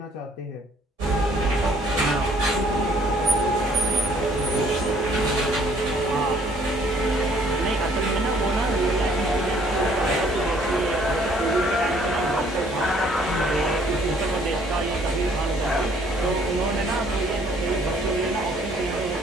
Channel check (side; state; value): both; normal; correlation 0.61